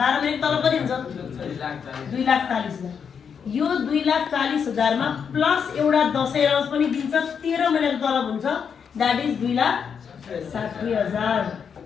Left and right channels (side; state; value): right; quieter; 6.9 dB